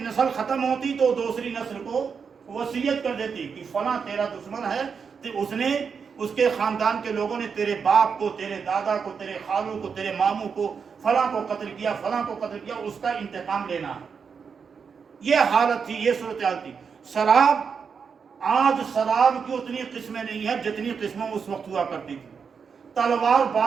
نسل ختم ہوتی تو دوسری نسل کو وصیت کر دیتی کہ فلاں تیرا دشمن ہے، تو اس نے، اس کے خاندان کے لوگوں نے تیرے باپ کو، تیرے دادا کو، تیرے خالوں کو، تیرے ماموں کو، فلاں کو قتل کیا، فلاں کو قتل کیا، اس کا انتقام لینا ہے۔ یہ حالت تھی، یہ صورتحال تھی۔ شراب، آج شراب کی اتنی قسمیں نہیں ہیں جتنی قسمیں اس وقت ہوا کرتی تھی۔ تلوار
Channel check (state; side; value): quieter; left; 6.1 dB